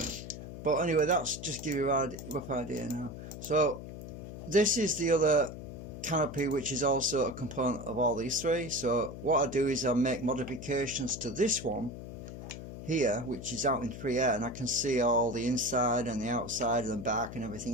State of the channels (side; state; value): left; noise; hum, 10 dB below the sound